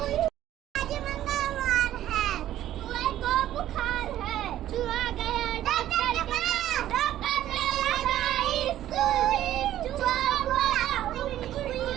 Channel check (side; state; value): left; quieter; 12.7 dB